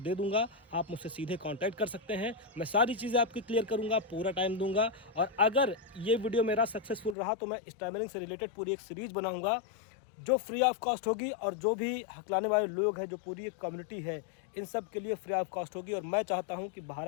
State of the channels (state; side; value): drops out; right; at 7.2 s